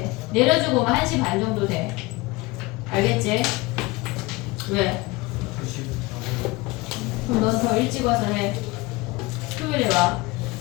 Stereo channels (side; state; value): right; quieter; 22.3 dB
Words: 내려주고 오면 1시 반 정도 돼. 알겠지? 왜? 그럼 넌 더 일찍 와서 해. 토요일에 와.